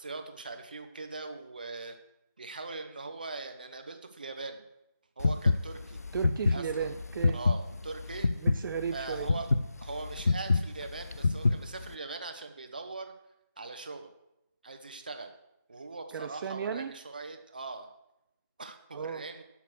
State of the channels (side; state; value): both; inverted; correlation -0.85